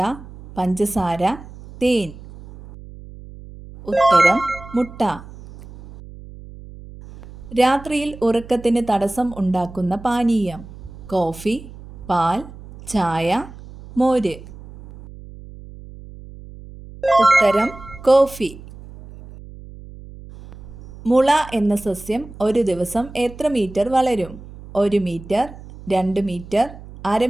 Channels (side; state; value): right; noise; hum, 17 dB below the sound